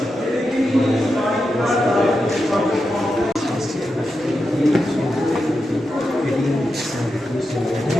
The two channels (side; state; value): both; normal; correlation 0.88